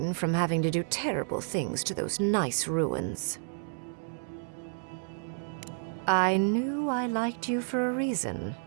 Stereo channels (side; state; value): left; silent; 57 dB below the other